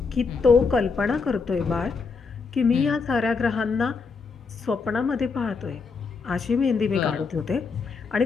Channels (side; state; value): right; quieter; 4.9 dB